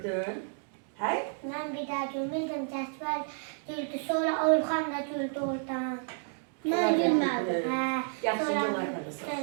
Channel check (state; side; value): silent; left; 57 dB below the other